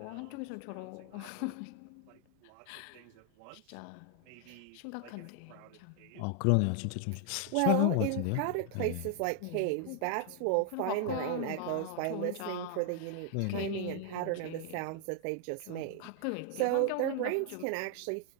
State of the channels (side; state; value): both; different; correlation 0.00